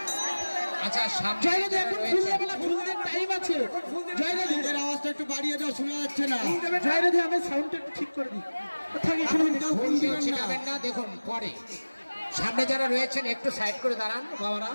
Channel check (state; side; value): inverted; both; correlation -1.00